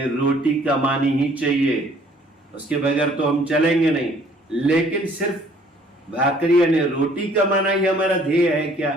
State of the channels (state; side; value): normal; both; correlation 0.58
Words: रोटी कमानी ही चाहिए, उसके बगैर तो हम चलेंगे नहीं। लेकिन सिर्फ भाकरी यानी रोटी कमाना ही हमारा ध्येय है